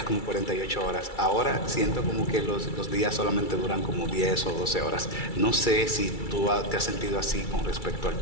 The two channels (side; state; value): right; late; 2.3 ms